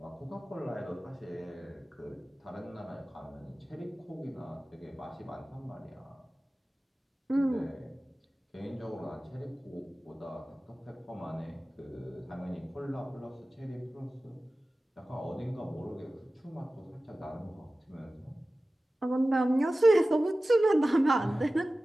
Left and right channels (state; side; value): normal; both; correlation 0.96